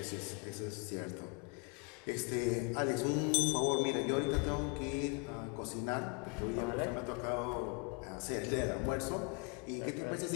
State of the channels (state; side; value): quieter; right; 33.2 dB